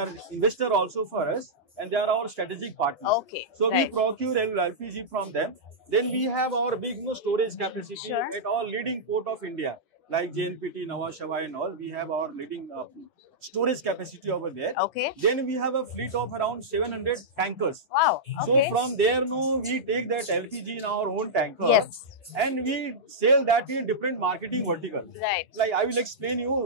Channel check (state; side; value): normal; both; correlation -0.11